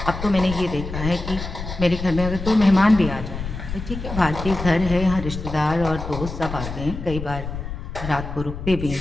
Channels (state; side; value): noise; left; rumble, 7 dB below the sound